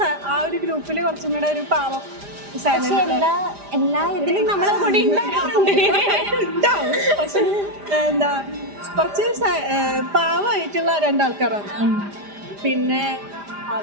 ആ ഒരു ഗ്രൂപ്പിൽ കുറച്ചും കൂടെ ഒരു പാവം എല്ലാ ഇതിലും നമ്മളെ കൂടി ഉണ്ടാവും. പക്ഷെ എന്താ കുറച്ച് പാവമായിട്ടുള്ള 2 ആൾക്കാരാണ്. പിന്നെ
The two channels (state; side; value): late; left; 5.0 ms